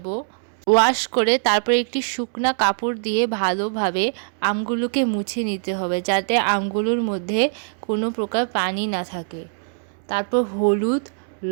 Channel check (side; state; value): left; silent; 64 dB below the other